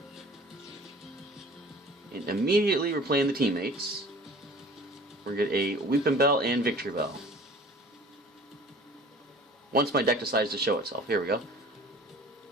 And immediately we're playing the teammates. We're going to get a Weeping Bell and Victreebel. Once my deck decides to show itself. Here we go.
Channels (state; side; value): normal; both; correlation 0.46